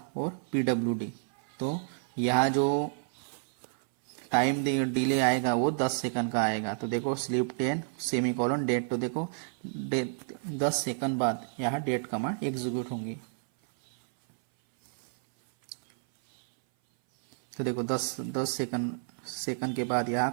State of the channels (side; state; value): left; silent; 58 dB below the other